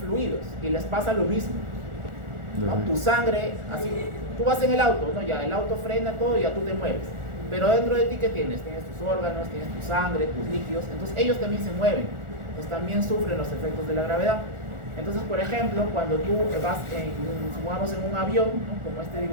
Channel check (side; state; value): left; late; 1.4 ms